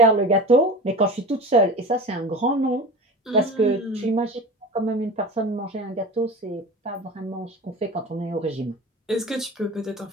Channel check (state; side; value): normal; both; correlation 0.32